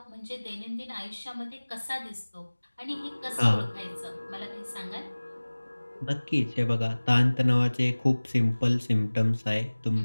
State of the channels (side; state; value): both; inverted; correlation -1.00